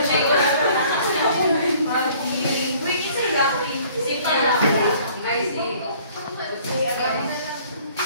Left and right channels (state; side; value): inverted; both; correlation -0.56